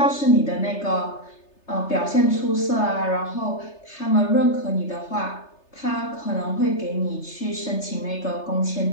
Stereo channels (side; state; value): right; late; 3.3 ms